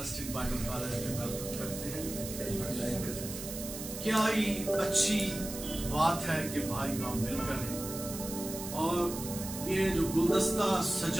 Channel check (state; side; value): noise; right; hiss, 9 dB below the sound